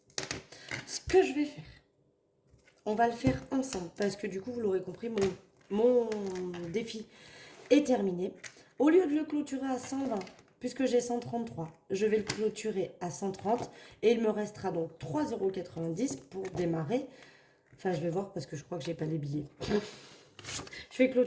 €. Ce que je vais faire, on va le faire ensemble parce que du coup, vous l'aurez compris, mon défi est terminé. Au lieu de le clôturer à 120, puisque j'ai 133, je vais le clôturer à 130 et il me restera donc 3,90 € pour démarrer. Enfin, je vais voir parce que je crois que j'ai pas les billets. Je vais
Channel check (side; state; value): both; identical; correlation 1.00